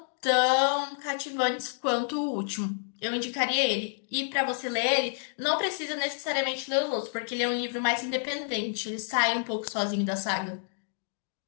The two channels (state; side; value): silent; right; 58 dB below the other